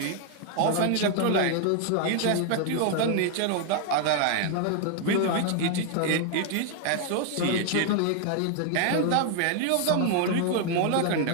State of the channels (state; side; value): different; both; correlation 0.00